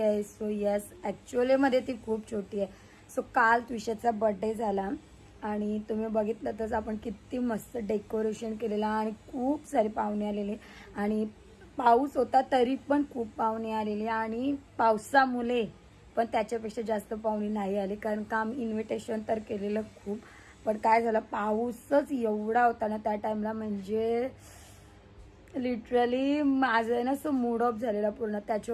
सो यस, ॲक्च्युअलीमध्ये ती खूप छोटी आहे. सो काल विशाचा बर्थडे झाला आणि तुम्ही बघितलं तर आपण किती मस्त डेकोरेशन केलेलं आणि खूप सारे पाहुणे आलेले आणि पाऊस होता तरी पण खूप पाहुणे आलेले आणि पावसामुळे पण त्याच्यापेक्षा जास्त पाहुणे नाही आले कारण का आम्ही इन्व्हिटेशन तर केलेलं खूप. पण काय झालं, पाऊसच एवढा होता ना त्या टाइमला, म्हणजे लिटरली माझं ना असं मूड ऑफ झालेला पूर्ण.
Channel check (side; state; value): both; identical; correlation 1.00